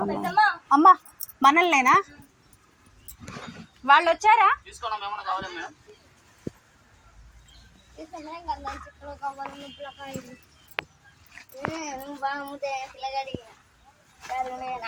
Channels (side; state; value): both; identical; correlation 1.00